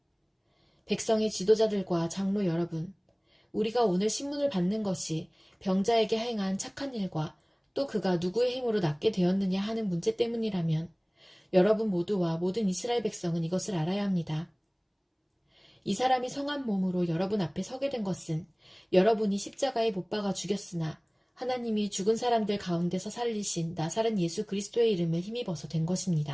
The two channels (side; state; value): both; identical; correlation 1.00